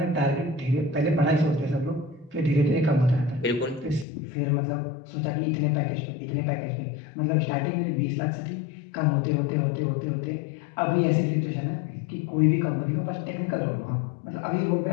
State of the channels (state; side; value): drops out; right; at 4.0 s